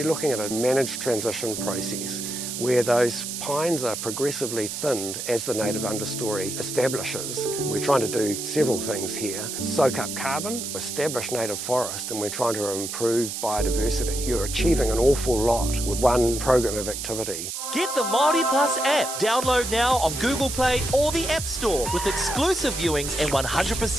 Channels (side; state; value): right; noise; hiss, 5 dB below the sound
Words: looking at a managed transition process where those pines are progressively thinned as the native understory establishes. We're trying to do several things here. Soak up carbon, establish native forest, and we're trying to improve biodiversity. You're achieving an awful lot with one program of activity. Get the Māori Plus app. Download now on Google Play or the App Store with exclusive viewings and